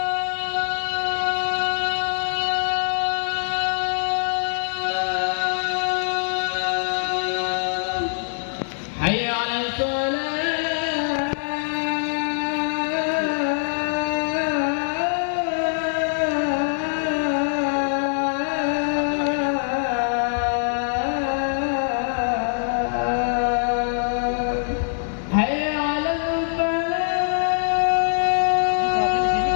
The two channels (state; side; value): silent; right; digital silence